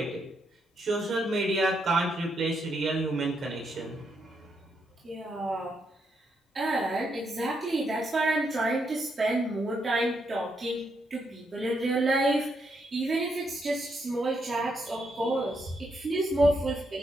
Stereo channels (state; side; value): normal; both; correlation 0.79